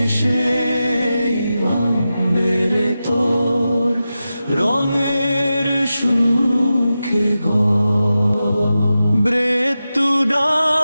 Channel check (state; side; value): inverted; both; correlation -0.92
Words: ভাঙবে রে তোর রঙের সুখে ঘর। মৃত্যু